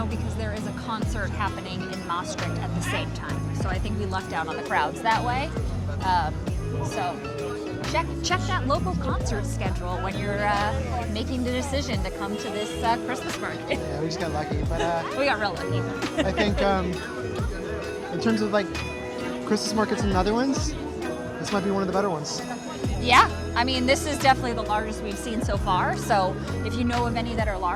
because there is a concert happening in Maastricht at the same time. So I think we lucked out on the crowds that way. So check that local concert schedule when you're making the decision to come to this Christmas market. Yeah, we just got lucky, but We got real lucky. I think in terms of like Christmas markets in the Netherlands, this might be one of the better ones. Yeah, I mean, this is definitely the largest we've seen so far. So if you know of any that are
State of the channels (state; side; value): identical; both; correlation 1.00